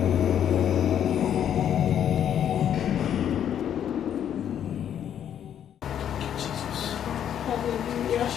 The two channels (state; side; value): quieter; right; 9.6 dB